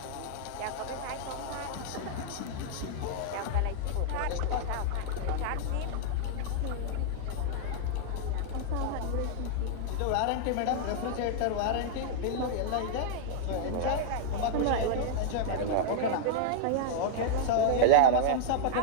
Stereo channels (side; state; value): both; different; correlation -0.01